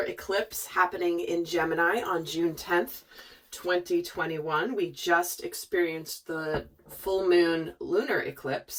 eclipse happening in Gemini on June 10th, 2021. We just experienced the full moon lunar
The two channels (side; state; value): both; identical; correlation 1.00